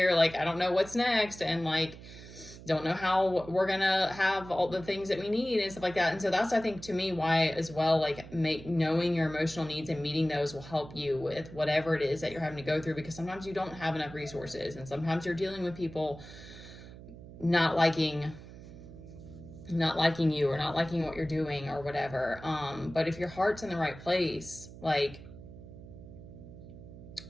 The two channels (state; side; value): noise; right; hum, 16 dB below the sound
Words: like I don't know what's next, and like don't know how we're gonna have all the things that we need and stuff like that. And so that's, I think, to me, why as well, like knowing your emotional needs and meeting those will help you with whatever it is that you're having to go through, because sometimes you don't have enough resources, and sometimes you're dealing with people not liking you or not liking what you're doing or whatever. But if your heart's in the right place, like,